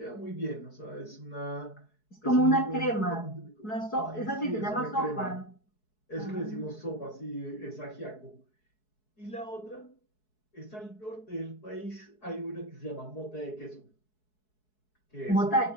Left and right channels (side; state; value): right; late; 4.7 ms